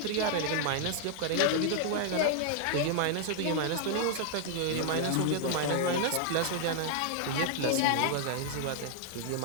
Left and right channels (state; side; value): different; both; correlation 0.00